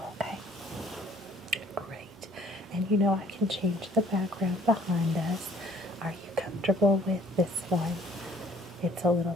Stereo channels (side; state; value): both; normal; correlation 0.57